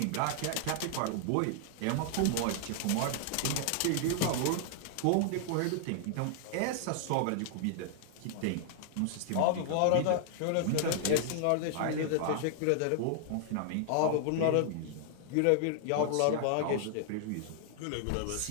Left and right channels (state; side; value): different; both; correlation 0.00